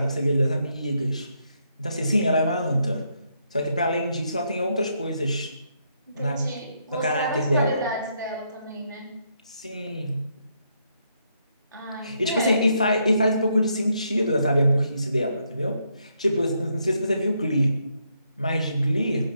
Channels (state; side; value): inverted; both; correlation -0.76